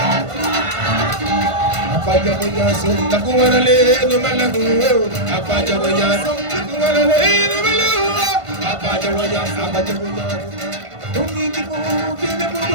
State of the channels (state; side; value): late; left; 1.5 ms